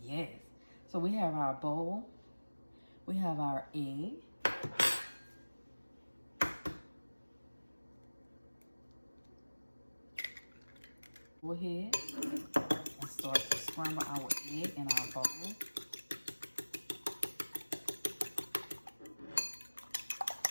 Yes. So we have our bowl. We have our egg. Go ahead and start to scramble our egg in our bowl.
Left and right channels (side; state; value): both; inverted; correlation -1.00